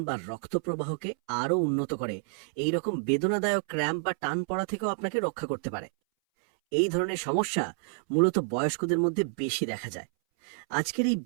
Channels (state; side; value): silent; left; 59 dB below the other